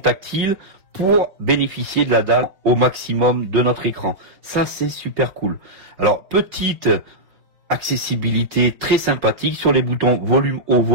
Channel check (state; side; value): late; left; 5.0 ms